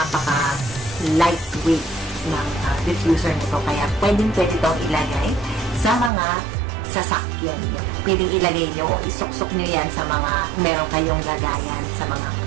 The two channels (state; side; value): drops out; left; at 6.1 s